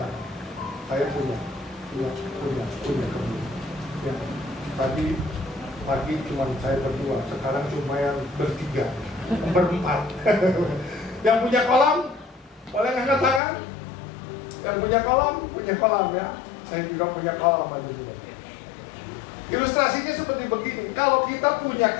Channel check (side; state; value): right; drops out; at 13.4 s